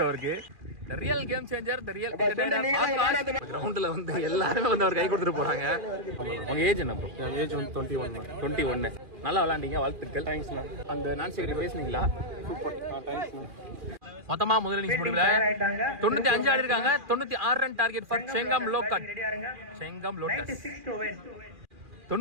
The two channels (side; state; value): left; late; 2.4 ms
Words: அவருக்கு. The real game changer, the real கிரவுண்ட்ல வந்து எல்லாருமே வந்து அவர் கை கொடுத்துட்டு போறாங்க. உங்க ஏஜ் என்ன ப்ரோ? என் ஏஜ் வந்து 21. நல்லா விளையாண்டீங்க, வாழ்த்துக்கள். Thanks ma'am. அந்த நான் செக்ரட்டரி பேசுனீங்களா? சூப்பர். Thanks ma'am. மொத்தமா முதல் இன்னிங்ஸ் முடிவுல 95 ஆடி இருக்காங்க. 96 ரன் டார்கெட் ஃபார் செங்கம் லோக்கட். Chengam Lotus